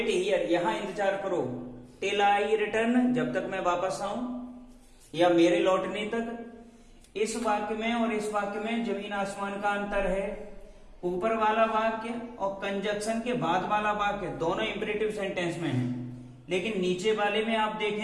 हियर, यहां इंतजार करो, टिल आई रिटर्न, जब तक मैं वापस आऊं या मेरे लौटने तक। इस वाक्य में और इस वाक्य में जमीन आसमान का अंतर है। ऊपर वाला वाक्य और कंजक्शन के बाद वाला वाक्य दोनों इंपरेटिव सेंटेंस में है, लेकिन नीचे वाले में आप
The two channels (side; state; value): both; identical; correlation 1.00